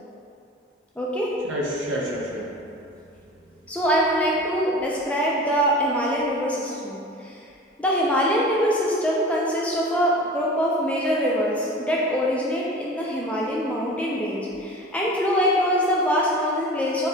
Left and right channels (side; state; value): both; normal; correlation 0.37